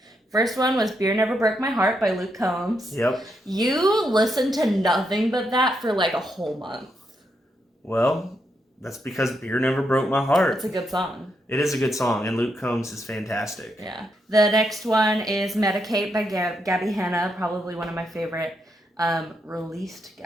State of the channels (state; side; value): normal; both; correlation 0.80